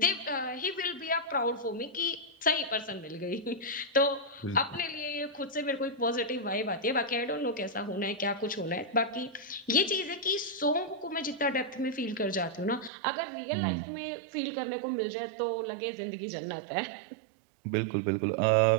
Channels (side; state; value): left; drops out; at 12.9 s